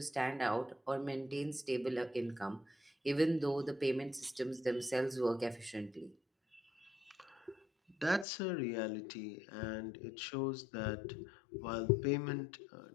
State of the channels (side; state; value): right; drops out; at 8.2 s